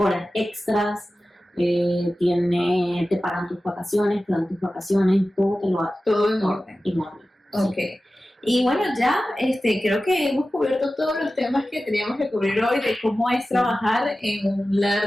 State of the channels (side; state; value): both; normal; correlation 0.95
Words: extras. Te pagan tus vacaciones, te dan tus vacaciones, todo te lo hacen. Todo en orden. En orden. Ok. Y bueno, ya creo que hemos cubierto todos los temas que teníamos que cubrir hoy de cómo es trabajar en un